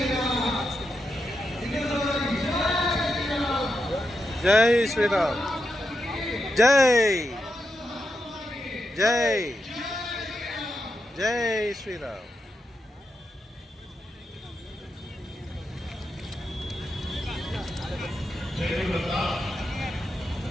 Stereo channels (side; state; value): both; normal; correlation 0.85